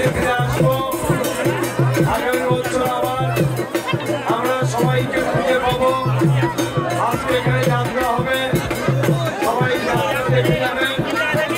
ফিরে আসবো। আগামী বছর আবার আমরা সবাইকে খুঁজে পাবো। আজকে এখানে যাত্রা হবে, সবাই যাত্রা দেখে যাবেন।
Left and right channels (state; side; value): identical; both; correlation 1.00